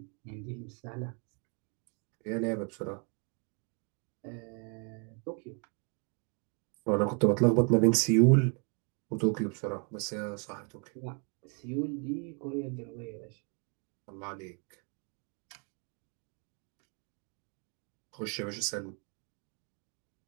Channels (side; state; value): left; quieter; 37.6 dB